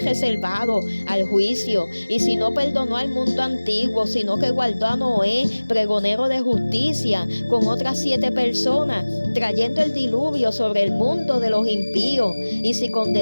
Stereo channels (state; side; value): inverted; both; correlation -1.00